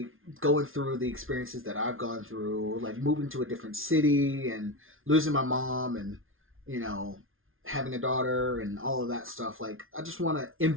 going through the experiences that I've gone through, like moving to a different city and losing my mom and, you know, having a daughter and all of that stuff. Like, I just want to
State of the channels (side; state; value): left; late; 0.60 ms